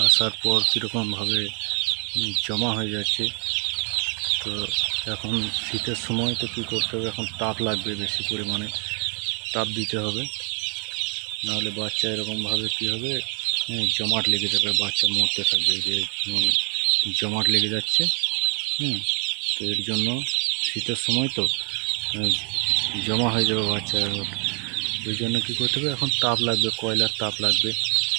আসার পর কীরকমভাবে জমা হয়ে যাচ্ছে। তো এখন শীতের সময় তো কী করতে হবে, এখন তাপ লাগবে, বেশি পরিমাণে তাপ দিতে হবে, নাহলে বাচ্চা এরকমভাবে কী হবে, জমাট লেগে যাবে, বাচ্চা মরতে থাকবে। যে জমাট লেগে যাচ্ছে। তো এর জন্য শীতের সময় তো জমা হয়ে যাবে বাচ্চা। ওই জন্য কী করতে হবে, এখন তাপ লাগবে, কয়লার তাপ লাগবে।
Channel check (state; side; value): quieter; left; 37.8 dB